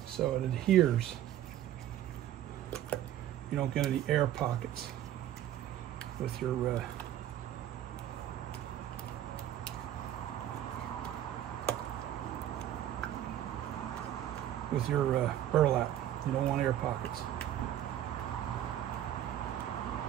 so it adheres. You don't get any air pockets with your burlap. You don't want air pockets.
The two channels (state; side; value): quieter; left; 11.8 dB